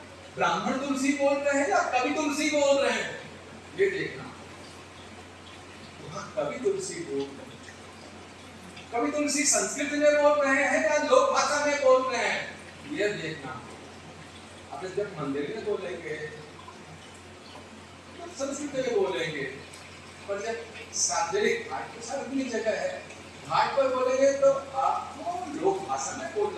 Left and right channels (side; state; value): both; identical; correlation 1.00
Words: ब्राह्मण तुलसी बोल रहे हैं या कवि तुलसी बोल रहे हैं? ये देखना, कवि तुलसी बोल रहे हैं, कवि तुलसी संस्कृत में बोल रहे हैं या लोक भाषा में बोल रहे हैं, ये देखना। अब जब मंदिर में बोलेंगे तो संस्कृत में बोलेंगे, पर जब सार्वजनिक घाट पर सार्वजनिक जगह है, घाट पर बोलेंगे तो आपको लोक भाषा में